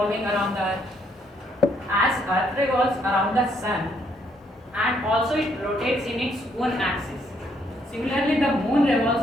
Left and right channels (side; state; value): both; normal; correlation 0.71